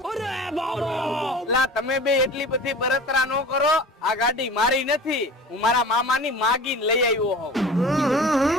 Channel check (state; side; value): normal; both; correlation 0.39